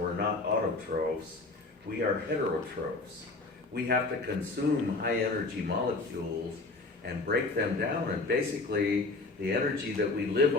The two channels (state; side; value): quieter; right; 3.4 dB